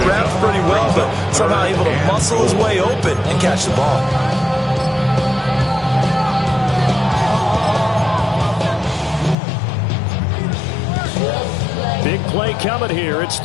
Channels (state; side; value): drops out; right; at 9.3 s